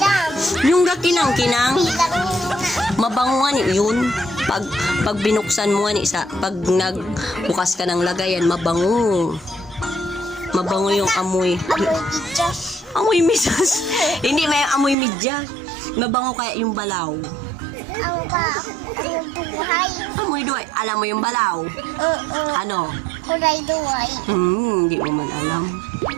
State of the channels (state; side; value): drops out; left; at 15.0 s